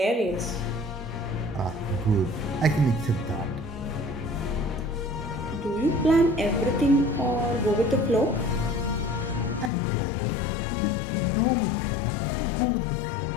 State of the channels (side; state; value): right; drops out; at 9.7 s